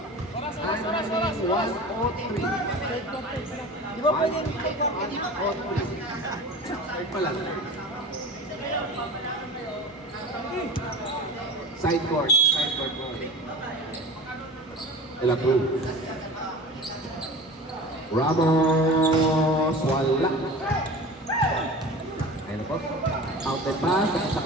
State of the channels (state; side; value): normal; both; correlation 0.35